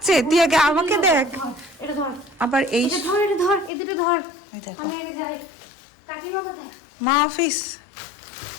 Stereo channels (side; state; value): right; drops out; at 3.7 s